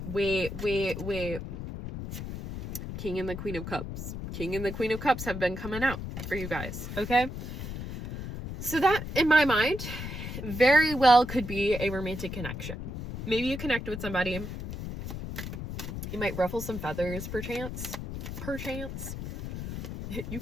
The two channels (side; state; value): left; noise; rumble, 7 dB below the sound